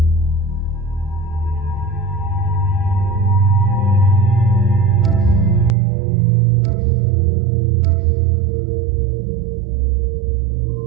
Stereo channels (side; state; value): left; drops out; at 5.8 s